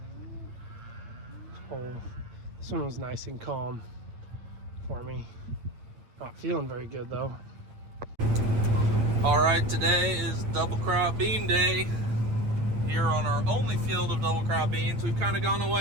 hole. This one was nice and calm for me. Not feeling very good though. All right, today is double crop bean day here on our only field of double crop beans. We've kind of gone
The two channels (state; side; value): late; left; 8.9 ms